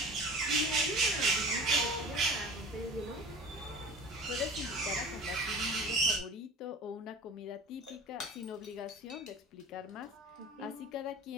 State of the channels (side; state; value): both; normal; correlation 0.38